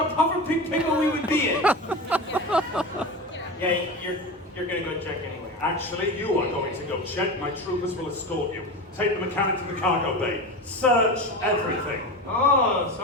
puffer pig pickle we would be in. Yeah, you're gonna go check anyway. Actually, you are going to go check. My troopers will escort you. Take the mechanic to the cargo bay. Search everything. Oh,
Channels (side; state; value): both; normal; correlation 0.26